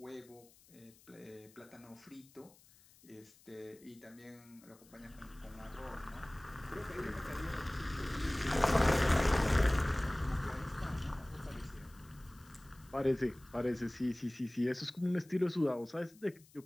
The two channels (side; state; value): left; noise; hiss, 26 dB below the sound